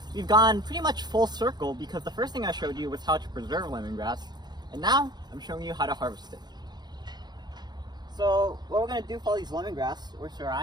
we've gone pretty much full circle, because the first thing I showed you was how to preserve lemongrass, and now I'm showing you how to harvest it. So what we're going to do for all these lemongrass, or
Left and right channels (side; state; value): left; late; 0.20 ms